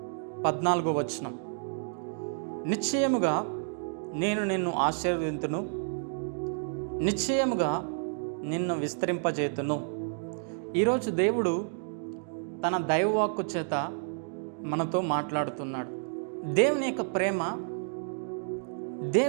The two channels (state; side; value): silent; left; digital silence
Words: 14వ వచనం. నిశ్చయముగా నేను నిన్ను ఆశీర్వదింతును, నిశ్చయముగా నిన్ను విస్తరింపజేతును. ఈరోజు దేవుడు తన దైవవాక్కు చేత మనతో మాట్లాడుతున్నాడు. దేవుని యొక్క ప్రేమ,